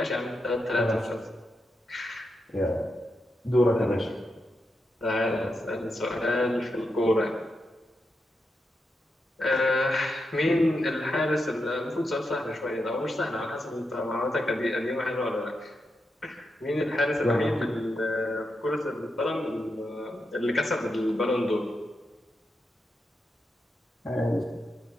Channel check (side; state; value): both; normal; correlation 0.86